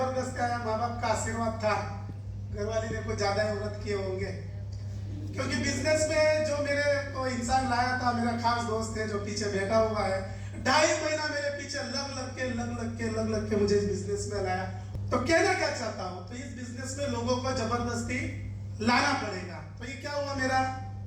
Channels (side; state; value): both; identical; correlation 1.00